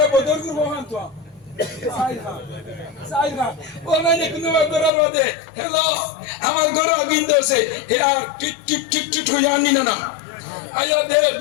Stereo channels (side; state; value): right; drops out; at 4.9 s